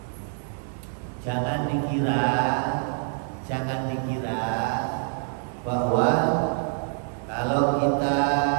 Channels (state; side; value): silent; left; 61 dB below the other